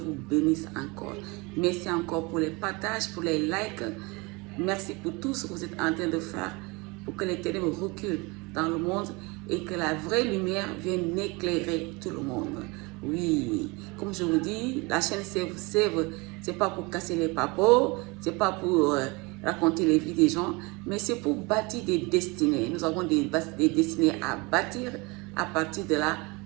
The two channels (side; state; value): left; quieter; 26.5 dB